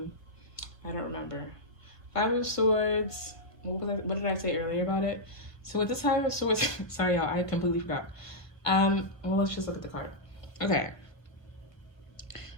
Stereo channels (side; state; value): right; late; 1.5 ms